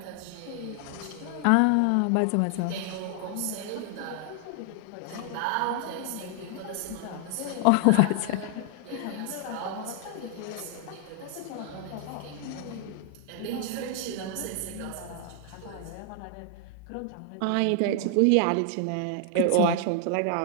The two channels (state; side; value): different; both; correlation 0.00